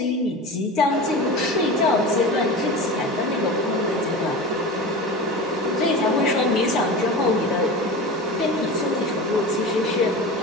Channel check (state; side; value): normal; both; correlation 0.30